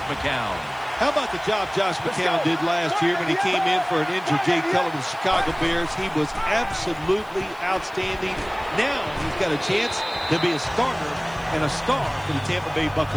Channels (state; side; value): noise; left; hiss, 27 dB below the sound